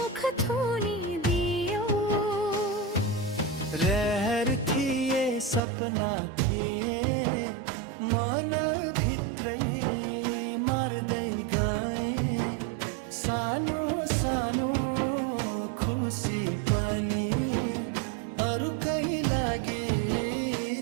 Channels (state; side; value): drops out; left; at 5.6 s